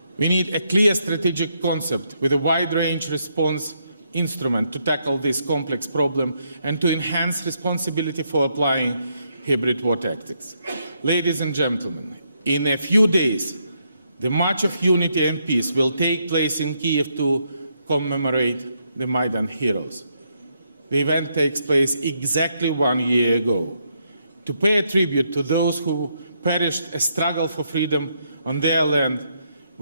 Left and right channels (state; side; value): inverted; both; correlation -0.77